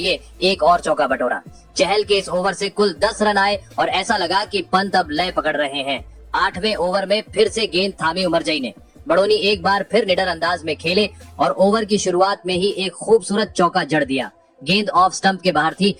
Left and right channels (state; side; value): identical; both; correlation 1.00